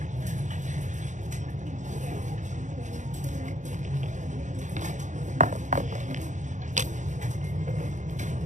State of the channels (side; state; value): left; late; 0.35 ms